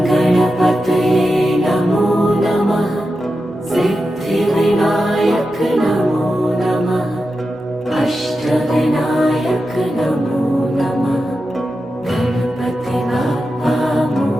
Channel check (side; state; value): both; normal; correlation 0.90